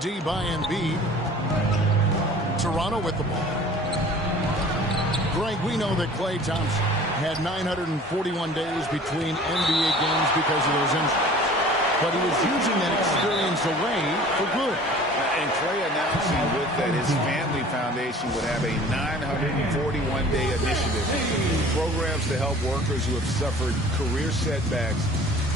by Embiid. Toronto with the ball. Greg, we know that Klay Thompson had 941 days between NBA games because of those injuries. But he was using that experience away for good. And Klay announcing with that his family foundation would have a 941-day initiative. Programs to help workers who have suffered career setbacks.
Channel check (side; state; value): both; normal; correlation 0.46